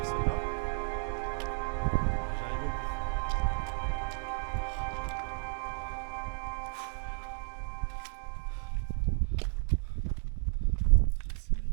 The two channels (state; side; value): silent; left; digital silence